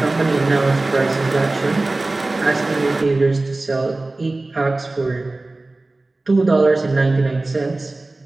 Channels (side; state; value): left; quieter; 3.0 dB